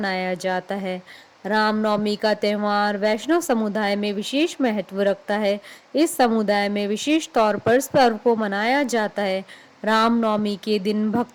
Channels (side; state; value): both; identical; correlation 1.00